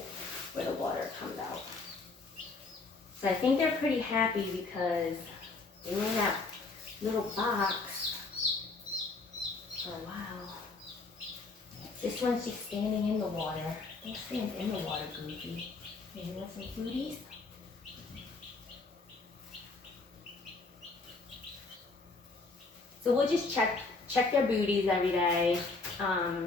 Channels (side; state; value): right; quieter; 3.8 dB